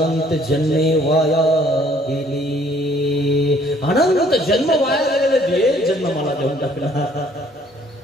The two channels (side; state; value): both; normal; correlation 0.60